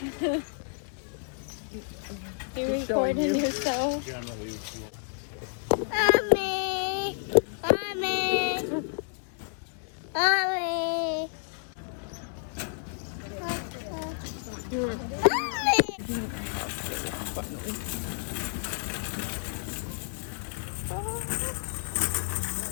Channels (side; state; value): right; silent; 58 dB below the other